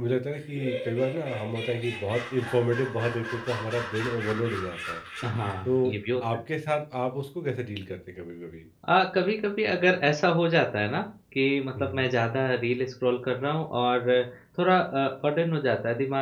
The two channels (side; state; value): both; identical; correlation 1.00